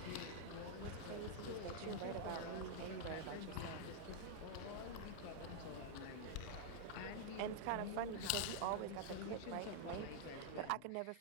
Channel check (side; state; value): both; different; correlation -0.01